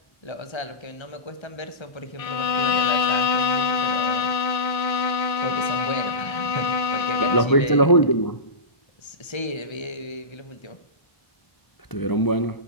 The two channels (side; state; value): right; late; 1.3 ms